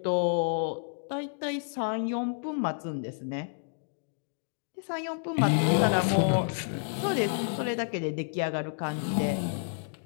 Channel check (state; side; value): silent; right; digital silence